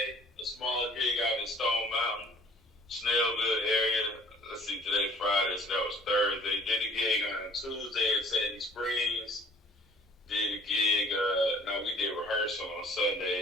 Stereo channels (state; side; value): normal; both; correlation 0.54